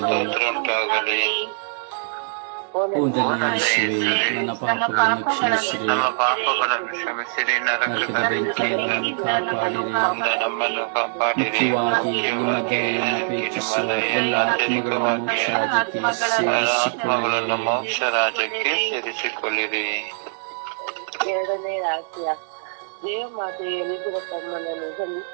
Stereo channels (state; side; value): silent; left; digital silence